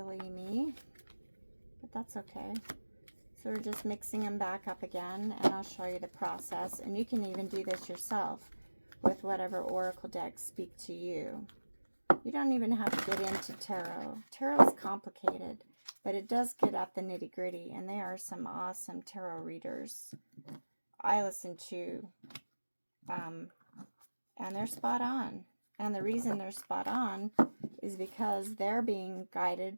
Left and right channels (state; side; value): inverted; both; correlation -1.00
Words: me, but that's okay. So we're just mixing them back up again, and I'll show you the process. And you can even do this yourself with whatever oracle decks speak to you. You don't even have to get into tarot. Tarot is complicated, but it does get at the nitty-gritty, and they are some awesome tarot readers I listen to, and they're spot on. And the reason they're spot on is because they're being